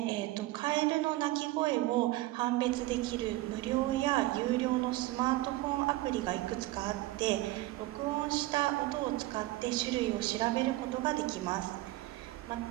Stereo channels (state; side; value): quieter; left; 18.0 dB